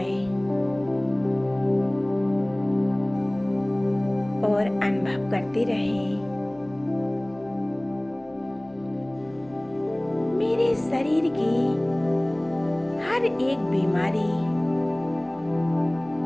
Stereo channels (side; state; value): left; noise; hum, 29 dB below the sound